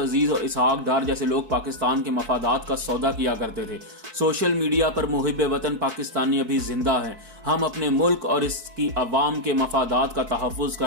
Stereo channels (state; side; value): late; left; 4.6 ms